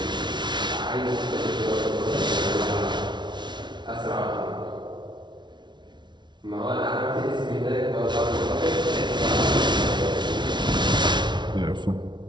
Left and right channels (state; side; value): late; left; 0.22 ms